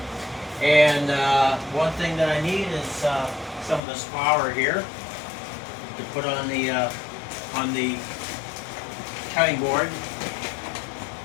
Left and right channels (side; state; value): right; drops out; at 3.8 s